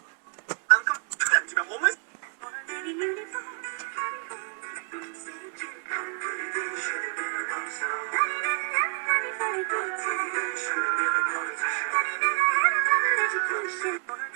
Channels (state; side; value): quieter; left; 38.2 dB